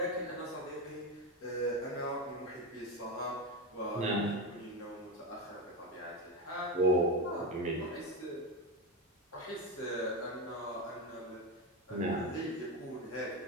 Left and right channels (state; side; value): normal; both; correlation 0.15